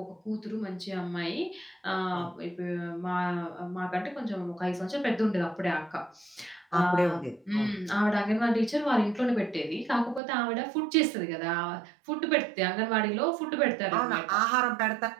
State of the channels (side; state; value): left; drops out; at 10.2 s